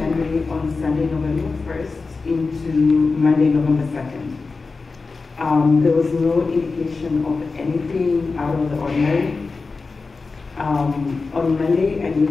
on Sunday, November 1st into Monday, November 2nd. There was no indication of anything out of the ordinary. On Monday, I knew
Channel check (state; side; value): quieter; right; 4.1 dB